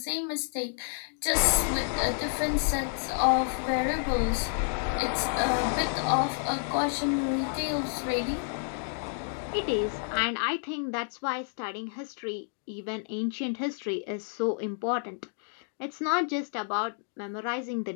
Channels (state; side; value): silent; right; digital silence